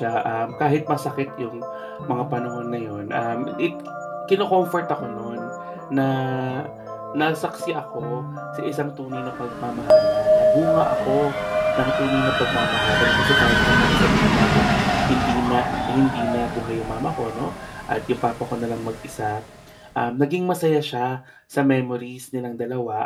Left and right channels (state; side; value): identical; both; correlation 1.00